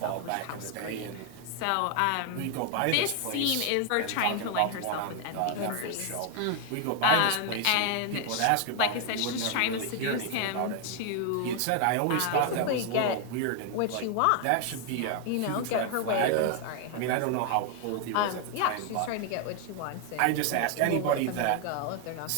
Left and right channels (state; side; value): different; both; correlation 0.00